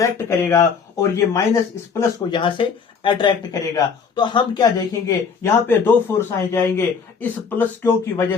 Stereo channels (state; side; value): quieter; right; 5.9 dB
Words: करेगा और ये माइनस इस प्लस को यहां से अट्रैक्ट करेगा। तो हम क्या देखेंगे, यहां पे दो फोर्स आ जाएंगे। इस प्लस क्यू की वजह